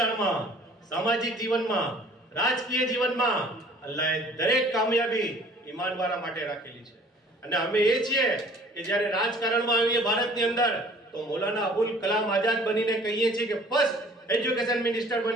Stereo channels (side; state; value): both; normal; correlation 0.52